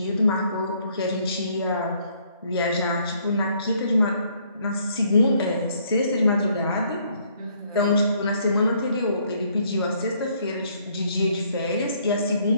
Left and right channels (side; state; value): both; inverted; correlation -0.66